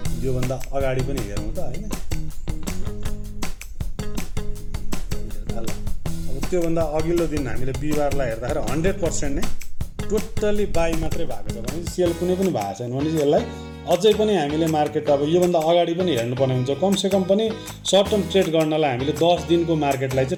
योभन्दा अगाडि पनि हेरौँ त होइन। अब त्योभन्दा अघिल्लो दिन हामीले बिहिबारलाई हेर्दाखेरि 100% नै टोटल्ली बाई मात्रै भएको छ भने सेल कुनै पनि भएको छैन भने यसलाई अझै पनि हामीले मार्केट अब योभन्दा अगाडि पनि हेर्नुपर्ने हुन्छ। कमसेकम पनि सर्ट टर्म ट्रेड गर्नलाई हामीले 10 दिनको मार्केटलाई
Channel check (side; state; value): both; identical; correlation 1.00